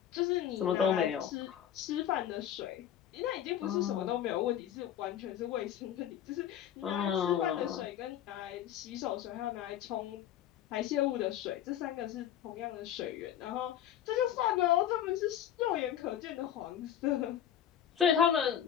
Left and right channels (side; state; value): right; quieter; 10.2 dB